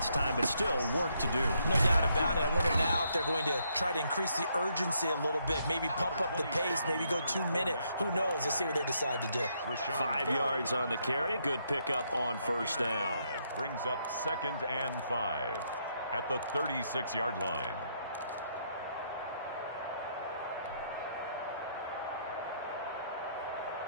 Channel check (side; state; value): both; inverted; correlation -0.74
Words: time, but still work to do. No doubt about it. I wonder now if they're going to try to increase the urgency a little bit, maybe pump up the pace, maybe go 2-minute. Who knows? Let's see what they decide to do. 5 yards on the carry. Good pickup on 1st down. Brings up 2nd and 5 at the 36-yard line.